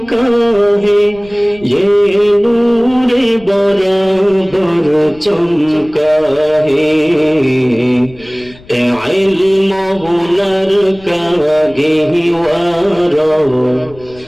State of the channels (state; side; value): noise; left; rumble, 23 dB below the sound